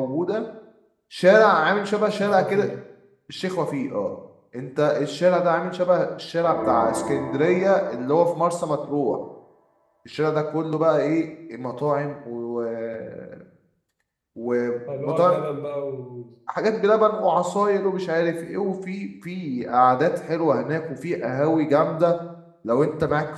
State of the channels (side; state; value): both; identical; correlation 1.00